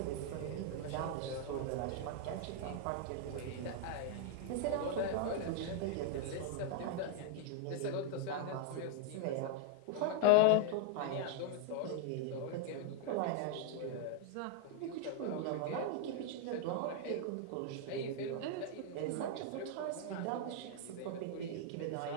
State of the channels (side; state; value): both; different; correlation 0.00